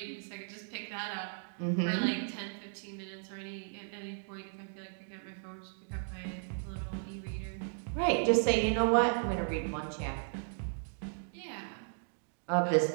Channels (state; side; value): silent; left; digital silence